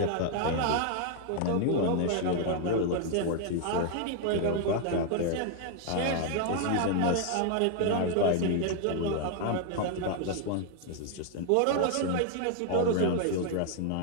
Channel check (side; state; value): both; different; correlation 0.00